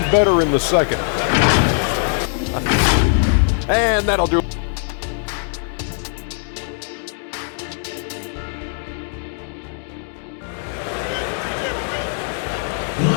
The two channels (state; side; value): silent; right; 59 dB below the other